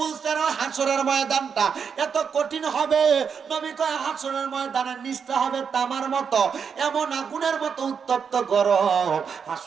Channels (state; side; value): quieter; left; 6.6 dB